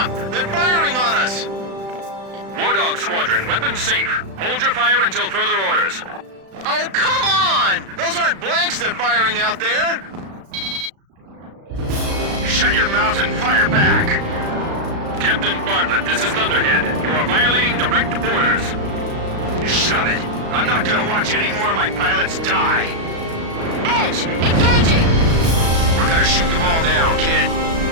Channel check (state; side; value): late; left; 36 ms